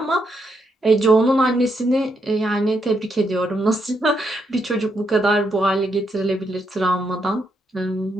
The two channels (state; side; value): normal; both; correlation 0.78